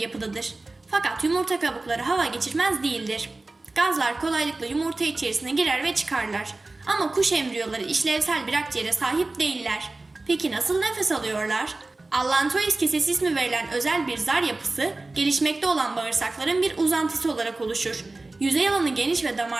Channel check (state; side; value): quieter; left; 3.1 dB